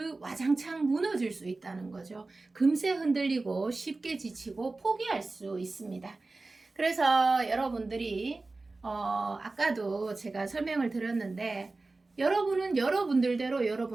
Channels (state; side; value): quieter; left; 3.4 dB